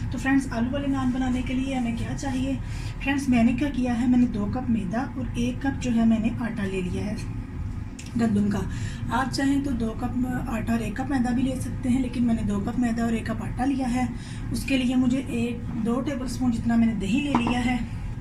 तो फ्रेंड्स, आलू वाले नान बनाने के लिए हमें क्या चाहिए? फ्रेंड्स, मैंने क्या किया है, मैंने 2 कप मैदा और 1 कप जो है मैंने आटा ले लिया है गंदम का। आप चाहें तो 2 कप आटा और 1 कप मैदा भी ले सकते हैं, लेकिन मैंने 2 कप मैदा और 1 कप आटा लिया है। उसके लिए मुझे 2 टेबल स्पून जितना मैंने दही ले लिया है,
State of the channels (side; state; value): both; identical; correlation 1.00